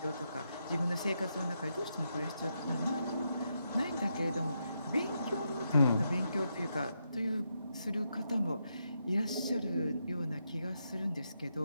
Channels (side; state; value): both; inverted; correlation -0.83